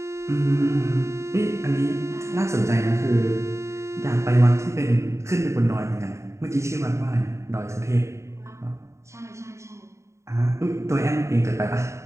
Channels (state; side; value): late; left; 0.14 ms